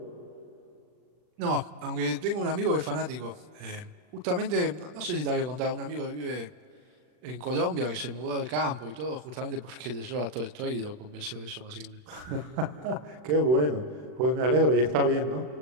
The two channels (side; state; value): left; late; 40 ms